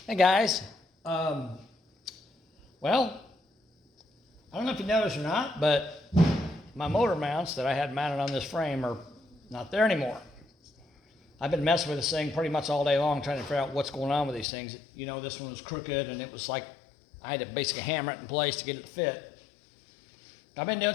Hey guys, well, I don't know if you noticed or not, but my motor mounts that I had mounted on this frame are not there anymore. I've been messing with this thing pretty much all day long trying to figure out what's going on with these things. You know, this one was crooked and it was like I had to basically hammer it in place to get it to fit. I've been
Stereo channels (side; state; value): right; drops out; at 14.5 s